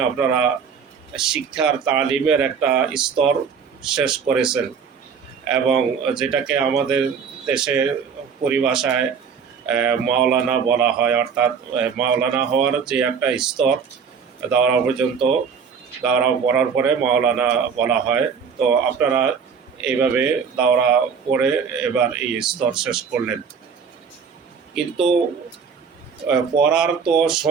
আপনারা শিক্ষার তালিমের একটা স্তর শেষ করেছেন, এবং যেটাকে আমাদের দেশের পরিভাষায় মাওলানা বলা হয়, অর্থাৎ মাওলানা হওয়ার যে একটা স্তর, দাওরা পর্যন্ত, দাওরা পড়ার পরে মাওলানা বলা হয়। তো আপনারা এইভাবে দাওরা পড়ে এবার এই স্তর শেষ করলেন, কিন্তু পড়ার তো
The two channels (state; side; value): quieter; left; 6.4 dB